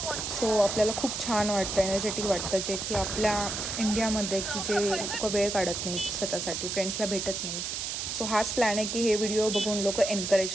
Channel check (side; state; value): right; noise; hiss, 3 dB below the sound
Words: सो आपल्याला खूप छान वाटतं, एनर्जेटिक वाटतं, जे की आपल्या इंडियामध्ये की जे लोक वेळ काढत नाहीत स्वतःसाठी, फ्रेंड्सला भेटत नाहीत. सो हाच प्लॅन आहे की हे व्हिडिओ बघून लोक